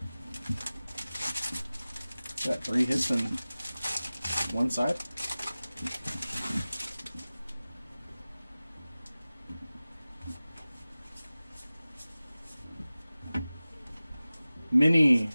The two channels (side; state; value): both; inverted; correlation -0.97